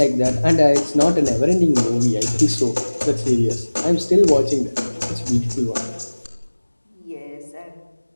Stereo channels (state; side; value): inverted; both; correlation -1.00